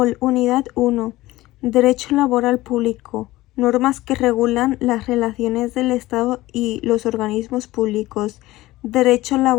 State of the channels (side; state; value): right; quieter; 17.6 dB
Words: 1. Derecho laboral público. Normas que regulan las relaciones del Estado y los organismos públicos. Derecho